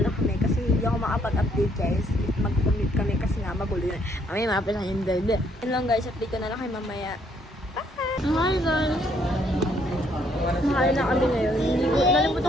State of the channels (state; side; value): normal; both; correlation 0.68